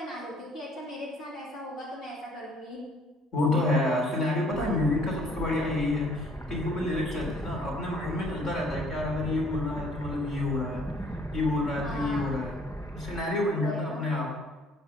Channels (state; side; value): normal; both; correlation 0.59